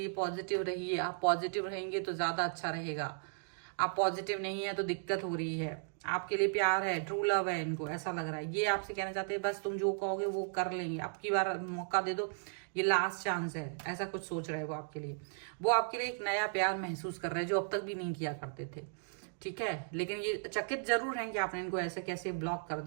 पॉजिटिव रहिए। आप पॉजिटिव रहेंगे तो ज्यादा अच्छा रहेगा। आप पॉजिटिव नहीं है तो दिक्कत हो रही है। आपके लिए प्यार है, ट्रू लव है, इनको ऐसा लग रहा है। ये आपसे कहना चाहते हैं बस तुम जो कहोगे वो कर लेंगे, अब की बार मौका दे दो, ये लास्ट चांस है, ऐसा कुछ सोच रहे हैं वो आपके लिए। वो आपके लिए एक नया प्यार महसूस कर रहे हैं जो अब तक भी नहीं किया करते थे, ठीक है। लेकिन ये चकित जरूर हैं कि आपने इनको ऐसे कैसे ब्लॉक कर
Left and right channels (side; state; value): left; silent; digital silence